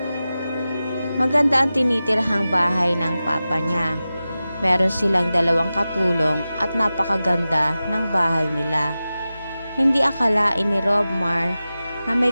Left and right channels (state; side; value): inverted; both; correlation -0.95